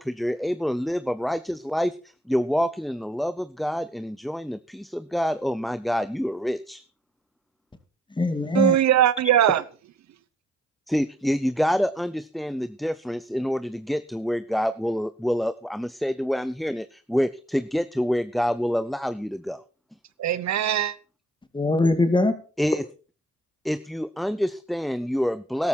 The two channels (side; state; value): both; normal; correlation 0.65